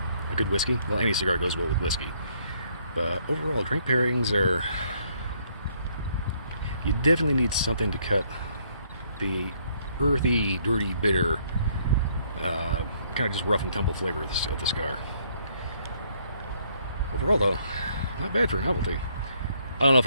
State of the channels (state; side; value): inverted; both; correlation -0.67